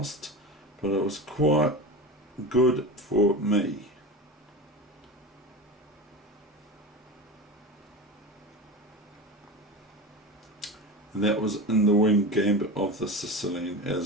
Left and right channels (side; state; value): both; normal; correlation 0.27